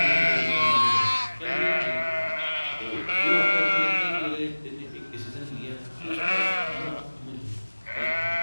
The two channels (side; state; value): both; inverted; correlation -1.00